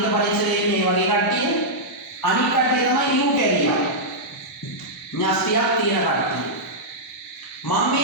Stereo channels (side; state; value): both; normal; correlation -0.09